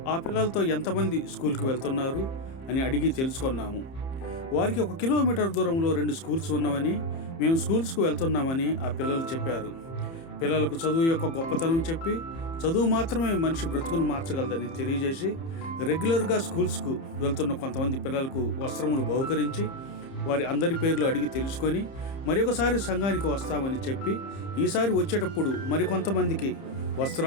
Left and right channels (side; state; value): right; late; 30 ms